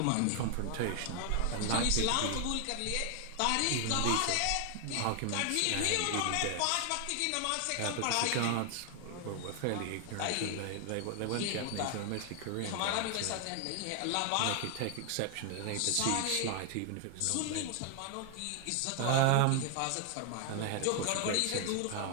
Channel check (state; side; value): different; both; correlation 0.00